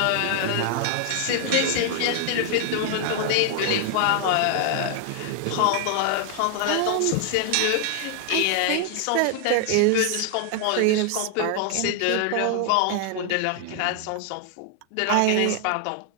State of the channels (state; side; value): different; both; correlation 0.00